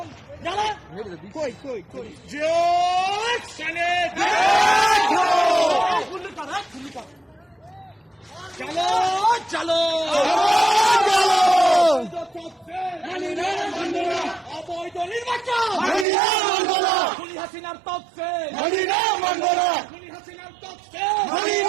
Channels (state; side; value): drops out; left; at 16.1 s